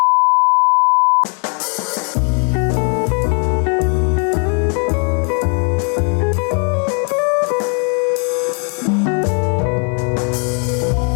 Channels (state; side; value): quieter; right; 39.1 dB